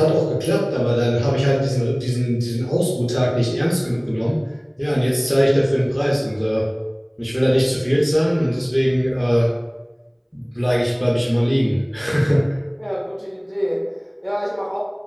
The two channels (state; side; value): identical; both; correlation 1.00